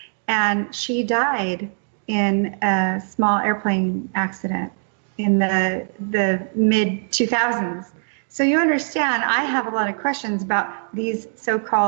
and she died in a small airplane accident in the mid-2000s. So you understand, I have a lot of questions about these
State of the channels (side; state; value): left; silent; digital silence